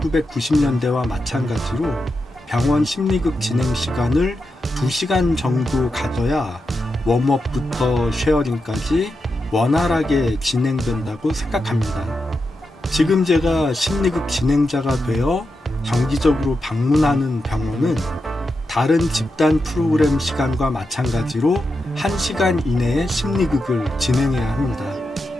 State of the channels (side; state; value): both; normal; correlation 0.88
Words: 마찬가지로 병원 심리극 진행 시간을 2시간 정도 가져야 웜업부터 쉐어링까지 원활하게 진행된다고 생각합니다. 지금 제가 심리극 진행자가 되어 정기적으로 방문하는 병원은 다른 집단 프로그램 시간과 마찬가지로 1시간 이내에 심리극을 진행해야 합니다.